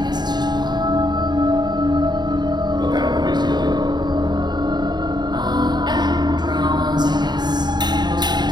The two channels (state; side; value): late; left; 0.21 ms